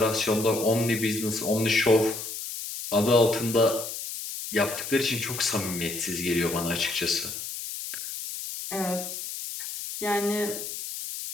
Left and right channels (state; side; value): noise; left; hiss, 7 dB below the sound